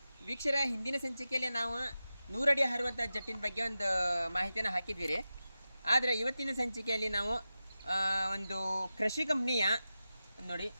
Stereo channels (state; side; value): inverted; both; correlation -0.93